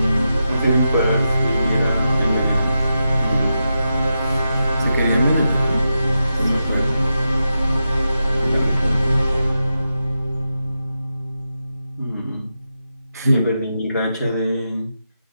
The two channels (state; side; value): inverted; both; correlation -0.88